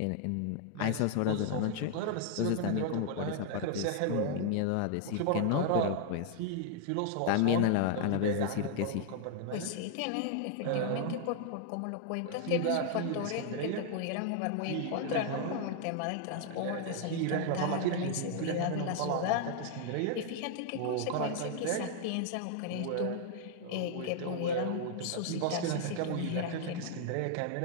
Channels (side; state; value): both; different; correlation 0.00